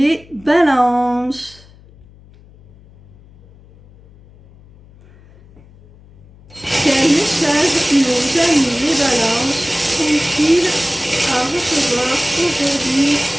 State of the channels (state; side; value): noise; left; hum, 25 dB below the sound